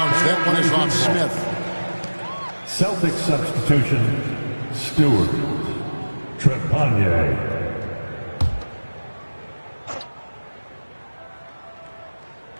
That one is off Smith. Celtics substitution, Stewart. Trepanier.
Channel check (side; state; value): both; inverted; correlation -1.00